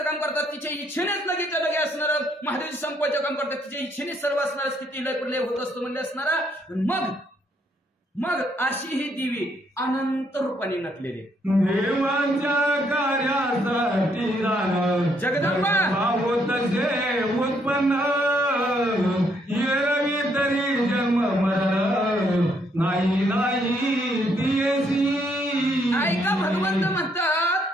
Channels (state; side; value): normal; both; correlation 0.71